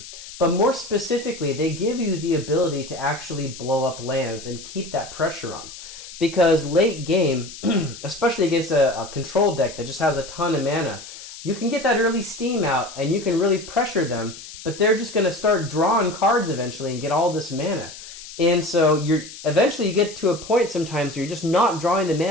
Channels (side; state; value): left; noise; hiss, 14 dB below the sound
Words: But more specifically, they give you the ability to actually blow up lands and keep that pressure on. Because late game, especially against a control deck that just has a ton of mana, you can get that early steam out and you can really pressure them, but they're just going to start drawing cards eventually and get all this mana. And so eventually you get to a point sometimes where you're just not drawing the